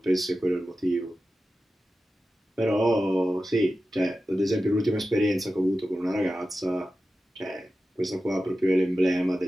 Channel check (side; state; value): both; normal; correlation 0.93